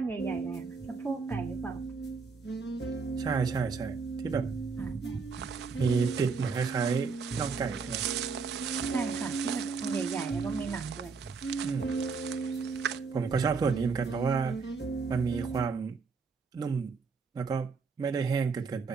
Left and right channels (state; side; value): quieter; left; 5.0 dB